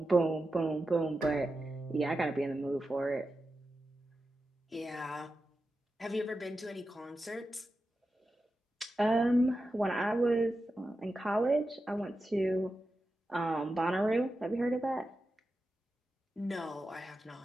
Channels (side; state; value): both; normal; correlation 0.91